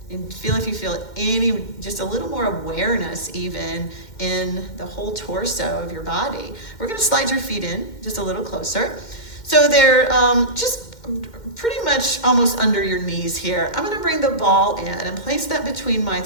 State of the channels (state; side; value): late; right; 2.1 ms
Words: And feel if you feel any, just a little more awareness even in the whole torso of your body. We're gonna slide your feet in just a little closer. So they're just pretty much almost under your knees here. I'm gonna bring the ball in and place that between my